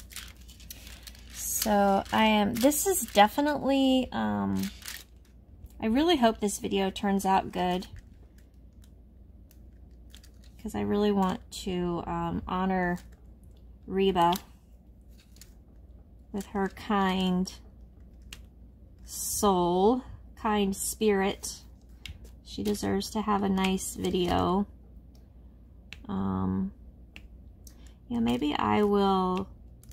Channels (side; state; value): both; identical; correlation 1.00